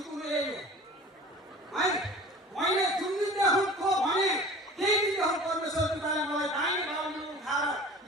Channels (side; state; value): both; normal; correlation 0.42